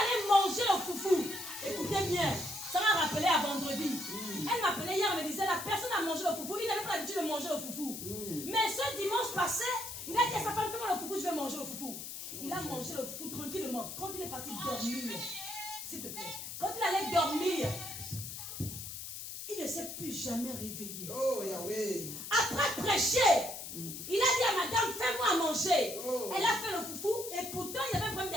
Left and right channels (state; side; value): noise; left; hiss, 8 dB below the sound